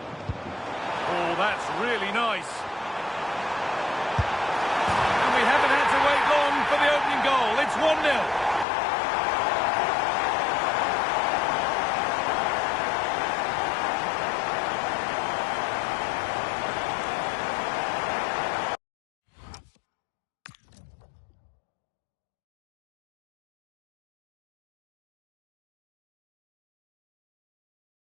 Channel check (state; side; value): drops out; right; at 8.7 s